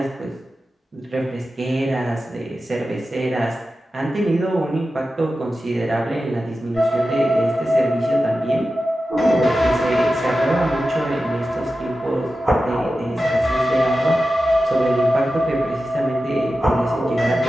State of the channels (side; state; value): both; normal; correlation 0.93